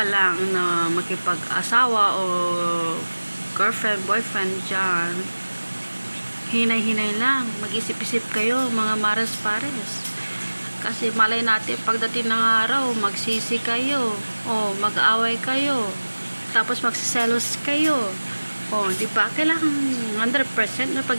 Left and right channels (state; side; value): inverted; both; correlation -1.00